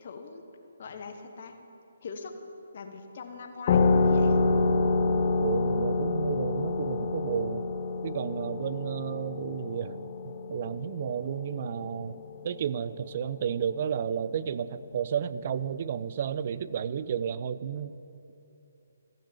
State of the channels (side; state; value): both; inverted; correlation -0.69